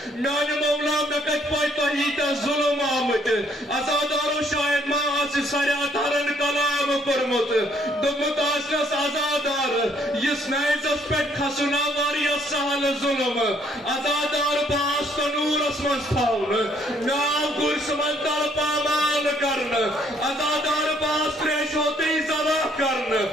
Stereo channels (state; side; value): normal; both; correlation 0.66